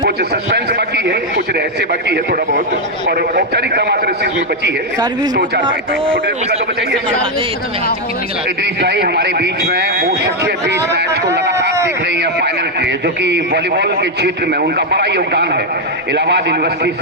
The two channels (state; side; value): normal; both; correlation 0.02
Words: कुछ सस्पेंस बाकी है, कुछ रहस्य बाकी है थोड़ा बहुत, और औपचारिकता मात्र इस चीज में बची है। तो 4 तो बचाइए। इदरीस भाई हमारे बीच में वो शख्सियत भी इस मैच को लगातार देख रही है फाइनल के, जो कि वॉलीबॉल के क्षेत्र में उनका बड़ा योगदान है। इलाहाबाद यूनिवर्सिटी